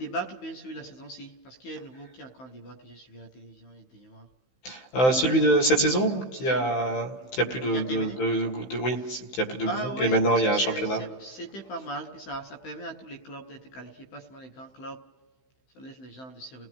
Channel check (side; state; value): right; late; 15 ms